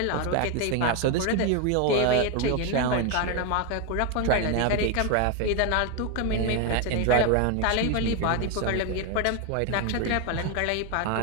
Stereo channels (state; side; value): different; both; correlation 0.01